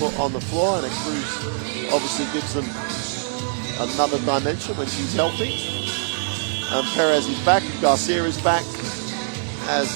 on the floor, and Cruz obviously gives them another dimension when she's healthy. And Perez is back, Garcia is back,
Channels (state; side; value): silent; left; digital silence